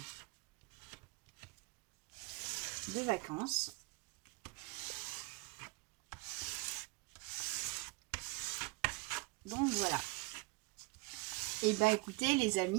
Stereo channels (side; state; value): left; quieter; 26.7 dB